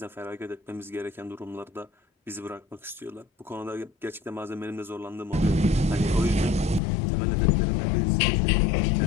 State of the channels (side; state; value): right; drops out; at 6.8 s